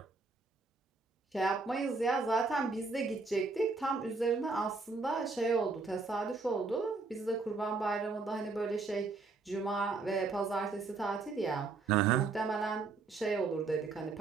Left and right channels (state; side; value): quieter; left; 4.0 dB